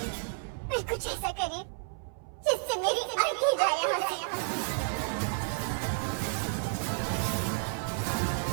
फिर कुछ ऐसा करिए जिससे मेरी जिंदगी जाए यहाँ से।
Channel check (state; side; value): silent; left; 57 dB below the other